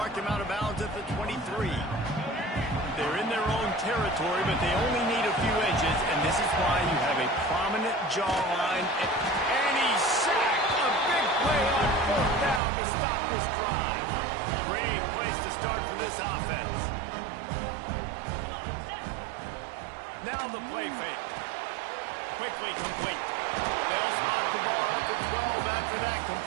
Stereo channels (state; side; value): drops out; left; at 12.6 s